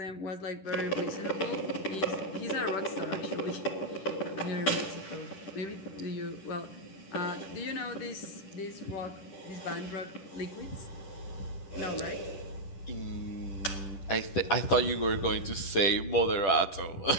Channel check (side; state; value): right; late; 10 ms